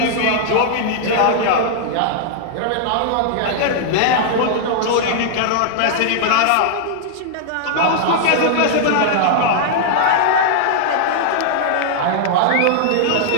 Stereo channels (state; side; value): different; both; correlation -0.01